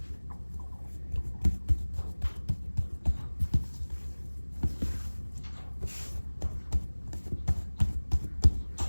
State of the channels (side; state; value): both; inverted; correlation -1.00